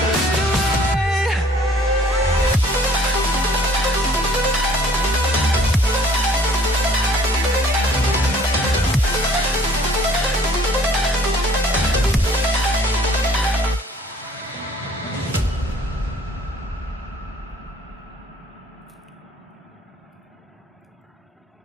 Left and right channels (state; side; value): normal; both; correlation 0.55